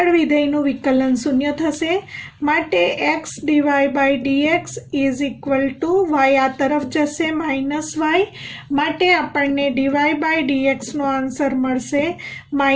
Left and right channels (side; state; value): both; identical; correlation 1.00